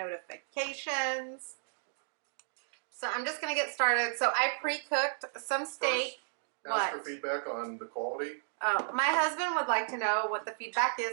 So I'm just going to get started. So I pre-cooked some steak. Ask for feedback on the quality. My husband would like to know what the feedback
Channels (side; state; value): left; silent; digital silence